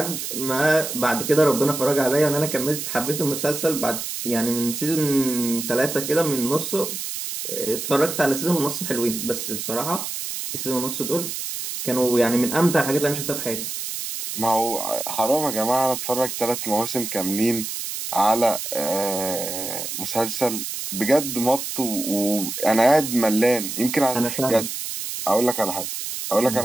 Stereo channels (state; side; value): noise; right; hiss, 5 dB below the sound